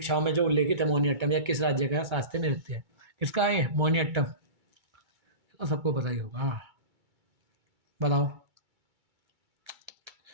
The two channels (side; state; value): left; late; 2.3 ms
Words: में जो उल्लेखित है मोहिनी अट्टम या किस राज्य का शास्त्रीय नृत्य है, किसका है मोहिनी अट्टम, तो सबको पता ही होगा। हाँ बताओ